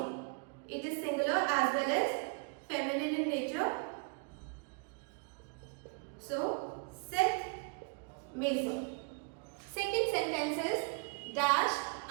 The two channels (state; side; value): quieter; left; 34.8 dB